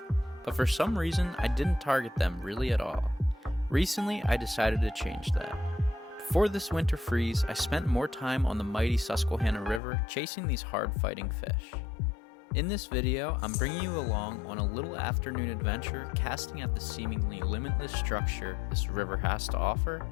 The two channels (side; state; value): right; drops out; at 9.8 s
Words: but for some reason I didn't target them really at all. Recently I decided to change that. Before this winter freeze, I spent more time on the mighty Susquehanna River chasing these hard-fighting fish. In this video, I'm bringing you along on a little afternoon adventure casting at the seemingly limitless structure this river has to offer,